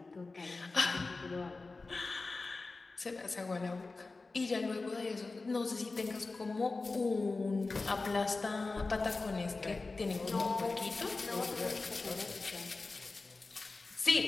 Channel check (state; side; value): quieter; right; 3.6 dB